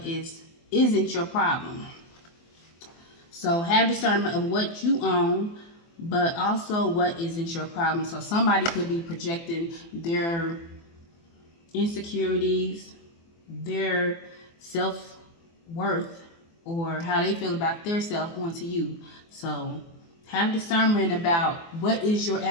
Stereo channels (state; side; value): late; right; 24 ms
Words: isn't your problem. So have discernment of what you own, but also what isn't your problem. So somebody could be projecting their insecurities, their self-worth, or how they feel about their self onto you. So have discernment about what is your